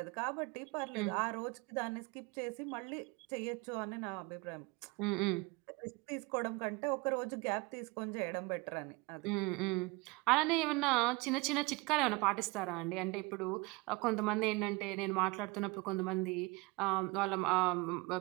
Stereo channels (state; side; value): quieter; left; 25.2 dB